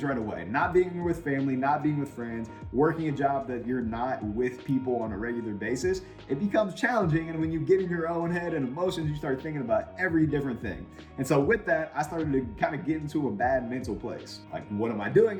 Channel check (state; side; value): identical; both; correlation 1.00